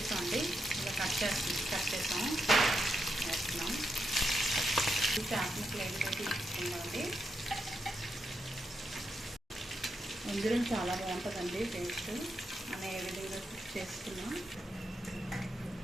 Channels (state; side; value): normal; both; correlation 0.83